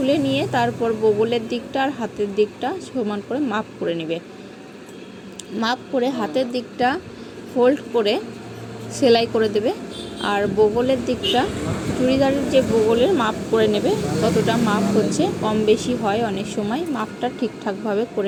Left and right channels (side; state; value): both; identical; correlation 1.00